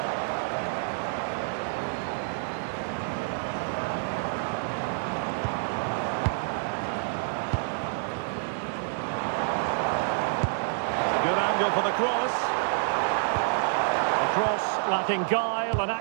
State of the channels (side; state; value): left; silent; digital silence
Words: Good angle for the cross. The cross lacking guile and